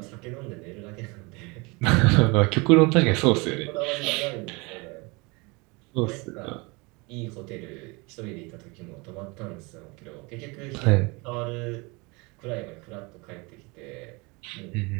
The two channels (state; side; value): quieter; left; 27.1 dB